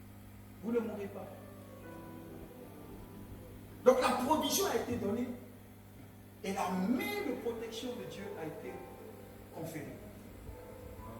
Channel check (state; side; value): identical; both; correlation 1.00